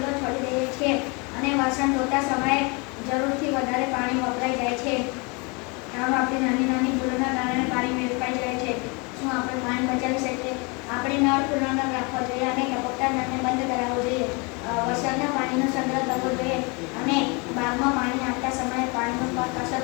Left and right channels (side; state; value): right; quieter; 30.1 dB